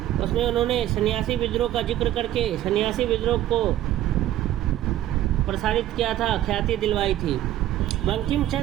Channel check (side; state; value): left; quieter; 13.2 dB